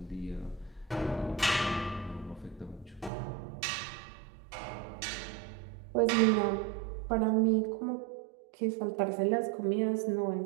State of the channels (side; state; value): left; drops out; at 3.1 s